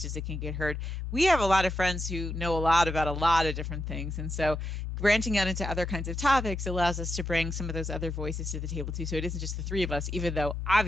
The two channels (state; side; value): normal; both; correlation 0.85